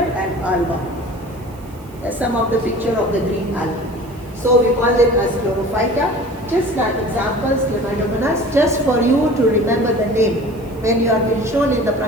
alba. Some of the picture of the green algae. So we call them as chlorophyta. Just like examples, Chlamydomonas, just for you to remember the name. When you are being shown in the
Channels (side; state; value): right; noise; hiss, 26 dB below the sound